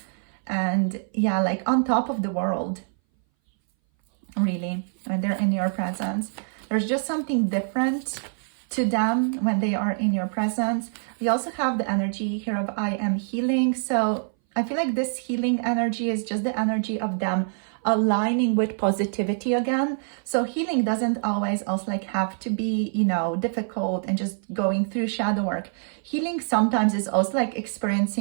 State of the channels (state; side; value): silent; left; 60 dB below the other